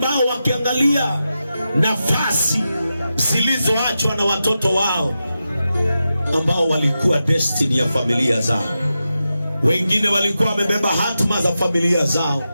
wakiangalia nafasi zilizoachwa na watoto wao ambao walikuwa destiny ya familia zao. Wengine walikuwa wamebeba hatima za familia zao.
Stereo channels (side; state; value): both; inverted; correlation -0.90